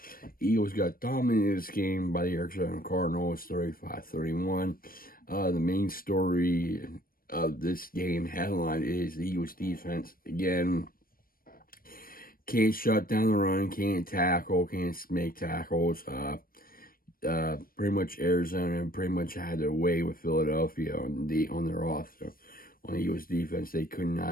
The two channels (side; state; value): right; late; 0.42 ms